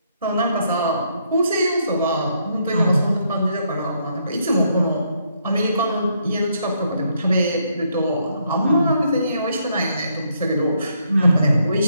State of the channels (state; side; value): inverted; both; correlation -0.74